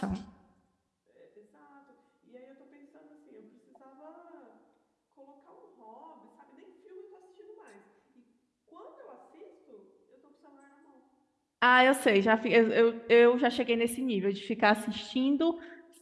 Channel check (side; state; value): both; identical; correlation 1.00